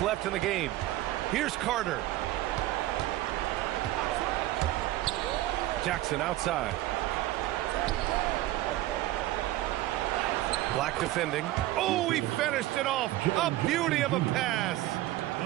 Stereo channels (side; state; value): left; quieter; 15.9 dB